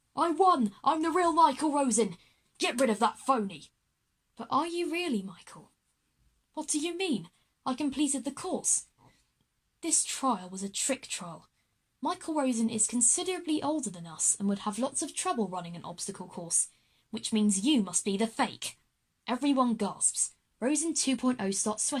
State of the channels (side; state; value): both; identical; correlation 1.00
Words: I won! I'm the real Michael Rosen! Get rid of that phony! But are you really, Michael? What do you mean? I completed the course. This trial was a trick trial. Michael Rosen is considerably older than us and would have lots of trouble running an obstacle course, which means you must be the fake. Everyone gasps. Rosen 2.0 starts